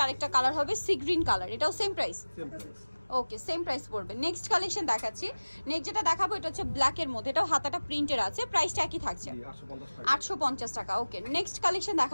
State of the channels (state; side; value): inverted; both; correlation -1.00